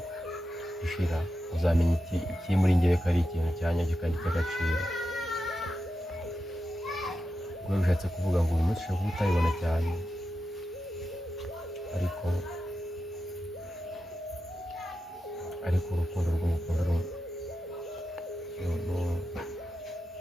ishira, uzamenya iki muri njyewe ko ari ikintu cyanyacyo kandi cy'agaciro. Ubwo bishatse kuvuga ngo uyu munsi ushobora kuba utabibona cyane, ariko urukundo rw'umukunda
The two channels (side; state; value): both; normal; correlation 0.89